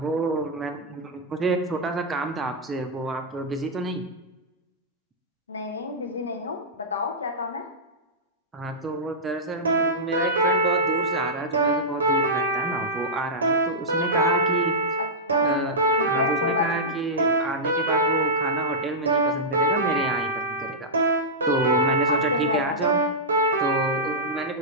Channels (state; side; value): normal; both; correlation -0.11